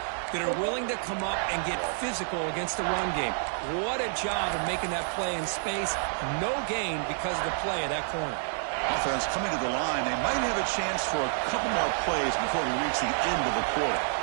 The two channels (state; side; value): silent; left; digital silence